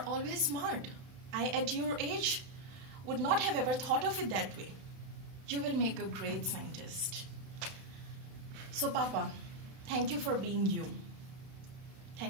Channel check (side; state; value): left; late; 32 ms